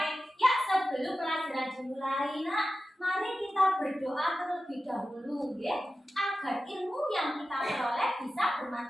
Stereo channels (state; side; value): normal; both; correlation 0.93